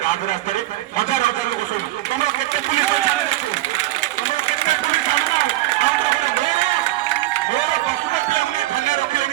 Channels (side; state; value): left; quieter; 16.7 dB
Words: ରାଜରାସ୍ତାରେ ହଜାର ହଜାର ଲୋକ ଶୁଣୁ ତମର କେତେ ପୁଲିସ ତମର କେତେ ପୁଲିସ ମୋର ପଶୁପତି ଆମେ ଥାନା